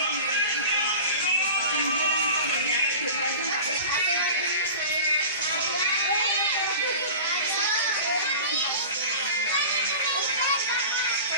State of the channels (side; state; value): both; inverted; correlation -0.36